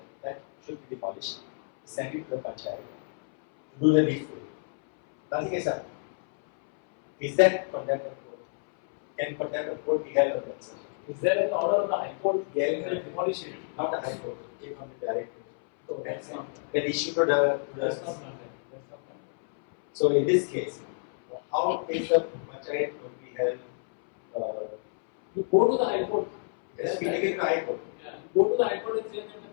that should be demolished, sent it to the Panchayat to do the needful. Nothing is happened. Is that contempt of court? Can contempt of court be held on that, sir? Is there an order of the High Court Yeah, to demolish it? not the High Court, it came from the director. So that's not. Then issued to the That's not contempt. That's not contempt. So in this case, how is the Panchayat would be held? You go to the High Court. It has been taken to the High Court. Yeah. You go to the High Court and say that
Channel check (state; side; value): silent; right; 59 dB below the other